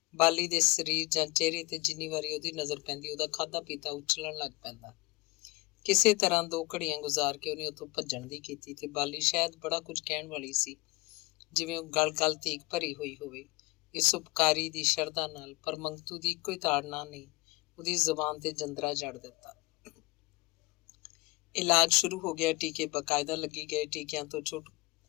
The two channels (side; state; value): right; quieter; 23.4 dB